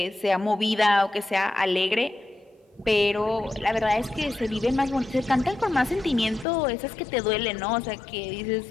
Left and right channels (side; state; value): right; drops out; at 6.5 s